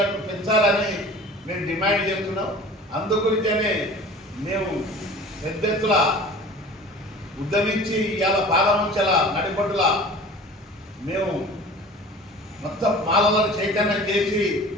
పెంచాలని మేము డిమాండ్ చేస్తున్నాం. అందు గురించే మేము పెద్ద ఎత్తున ఉద్యమించి ఇవాళ పాలముంచల నడిపట్టుల మేము మొత్తం మాలలను చైతన్యం చేసి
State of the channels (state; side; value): normal; both; correlation 0.42